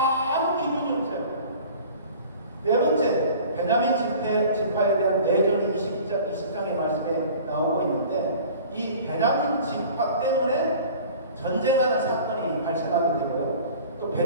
기준이 없어요. 네 번째, 베냐민 지파에 대한 내전이 20장의 말씀에 나오고 있는데 이 베냐민 지파 때문에 전쟁하는 사건이 발생하게 되고요. 또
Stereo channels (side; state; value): both; inverted; correlation -0.44